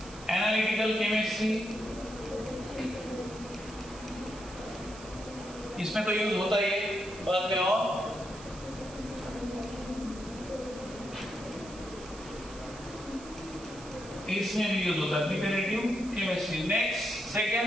एनालिटिकल केमिस्ट्री, इसमें तो यूज होता ही है बाद में, और इसमें भी यूज होता है प्रिपरेटिव केमिस्ट्री। नेक्स्ट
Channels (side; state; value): right; noise; hiss, 17 dB below the sound